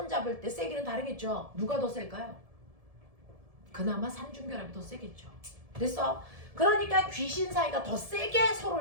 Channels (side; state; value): left; late; 1.7 ms